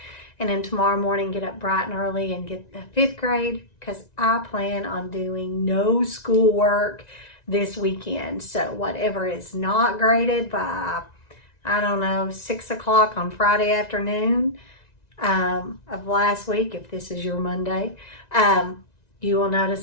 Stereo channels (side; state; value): right; late; 1.9 ms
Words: And then tomorrow morning get up bright and early and get the 5th grade, because I plan on doing no schoolwork this weekend. So whatever is not graded by, I don't know, 6 o'clock on Friday afternoon of last week, if this is your Monday, you will